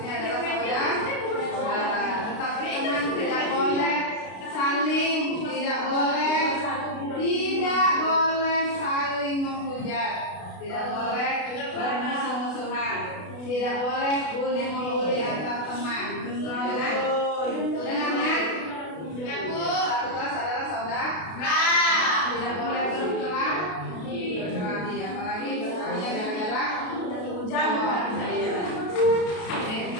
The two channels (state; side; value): late; right; 32 ms